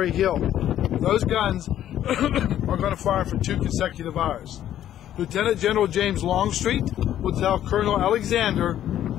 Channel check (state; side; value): quieter; right; 11.5 dB